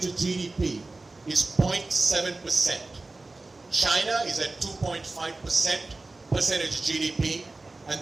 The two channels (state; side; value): quieter; left; 3.2 dB